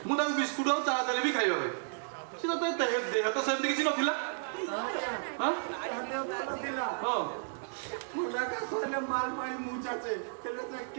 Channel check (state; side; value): silent; left; digital silence